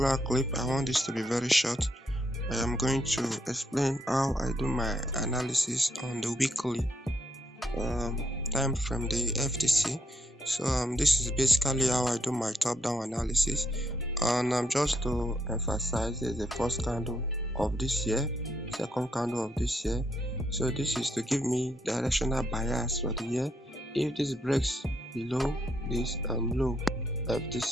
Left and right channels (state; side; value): normal; both; correlation 0.77